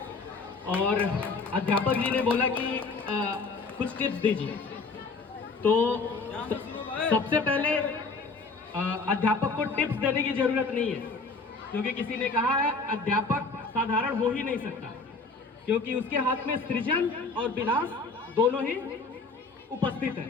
और अध्यापक जी ने बोला कि कुछ टिप्स दीजिए, तो सबसे पहले अध्यापक को टिप्स देने की जरूरत नहीं है, क्योंकि किसी ने कहा है अध्यापक साधारण हो ही नहीं सकता, क्योंकि उसके हाथ में सृजन और विनाश दोनों ही उपस्थित है।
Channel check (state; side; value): quieter; right; 4.1 dB